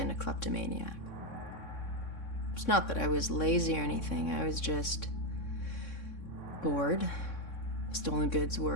a kleptomaniac. It's not that I was lazy or anything, I was just bored. Stolen goods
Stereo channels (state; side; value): late; right; 3.6 ms